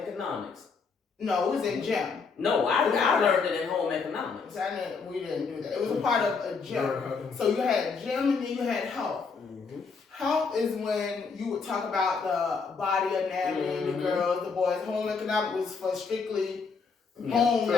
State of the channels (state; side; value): quieter; right; 5.1 dB